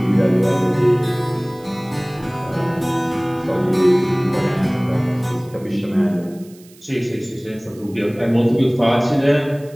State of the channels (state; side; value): noise; right; hiss, 26 dB below the sound